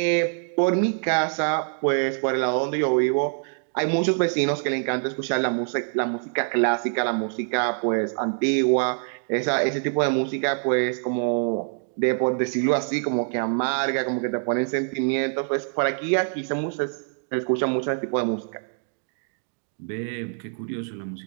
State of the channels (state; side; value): silent; left; 62 dB below the other